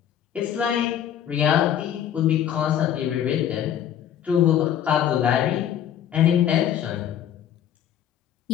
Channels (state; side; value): quieter; right; 10.1 dB